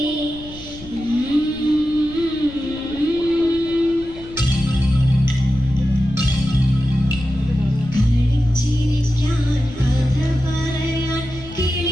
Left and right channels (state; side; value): noise; left; rumble, 17 dB below the sound